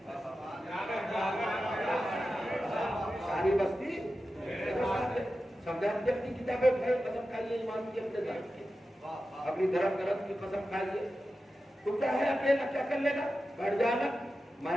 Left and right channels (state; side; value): normal; both; correlation 0.92